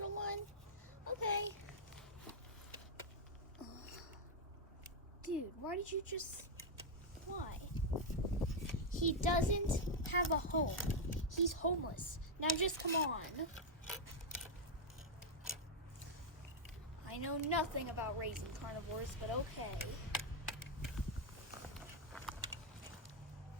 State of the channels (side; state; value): both; normal; correlation -0.01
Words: one? Okay. Dude, why did you just... Why? He doesn't have a home. He's homeless. Now just come on. I know nothing about raising carnivores, but okay.